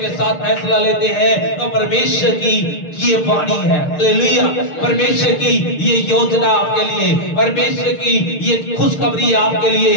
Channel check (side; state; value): right; late; 6.6 ms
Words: के साथ फैसला लेते हैं तो परमेश्वर की ये वाणी है। हालेलुया। परमेश्वर की ये योजना आपके लिए, परमेश्वर की ये खुशखबरी आपके